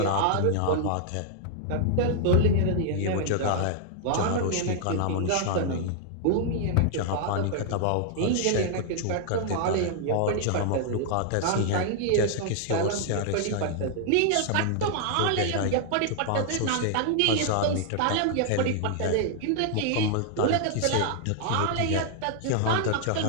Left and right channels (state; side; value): different; both; correlation -0.01